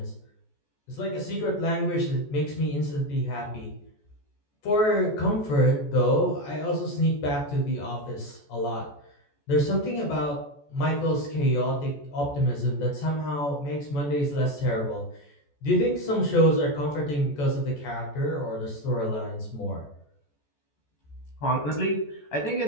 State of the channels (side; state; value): right; late; 14 ms